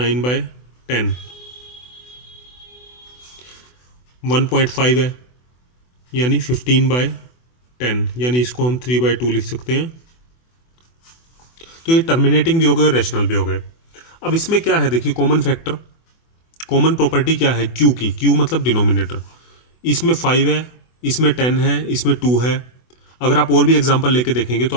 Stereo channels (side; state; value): right; late; 24 ms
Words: 1.5 है, यानी 15/10, यानी इसको हम 3/2 लिख सकते हैं। तो ये टर्मिनेटिंग भी हो गए और रेशनल भी हो गए। अब इसमें क्या है, देखिए कॉमन फैक्टर, कॉमन प्रॉपर्टी क्या है क्यू की, क्यू मतलब डिनोमिनेटर। इसमें 5 है, इसमें 10 है, इसमें 2 है। अगर आप और भी एग्जांपल लेके देखेंगे तो